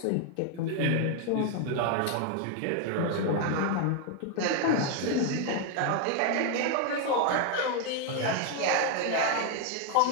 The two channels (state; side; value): different; both; correlation 0.01